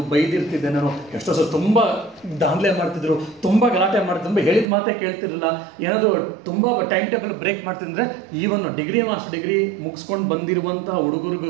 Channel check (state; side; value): drops out; left; at 4.7 s